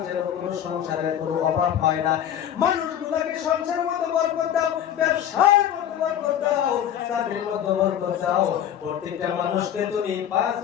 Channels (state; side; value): quieter; right; 10.2 dB